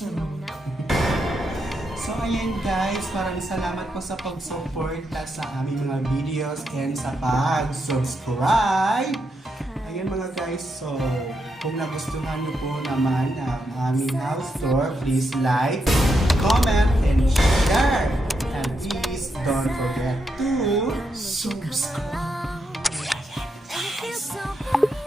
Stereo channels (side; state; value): both; normal; correlation 0.82